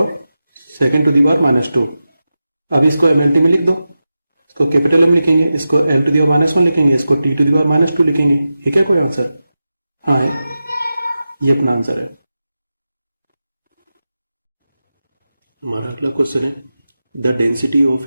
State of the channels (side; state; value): both; inverted; correlation -0.92